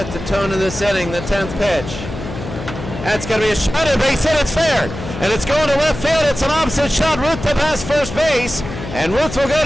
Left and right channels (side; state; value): left; noise; hum, 9 dB below the sound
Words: the tone of this inning, the 10th pitch. That's going to be a shot at base hit, it's fair. And it's going to left field, it's an opposite shot. Ruth to pass first base. And Ruth will go